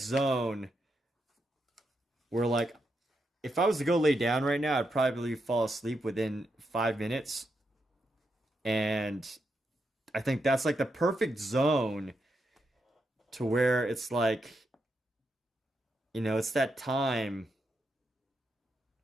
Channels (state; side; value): normal; both; correlation 0.83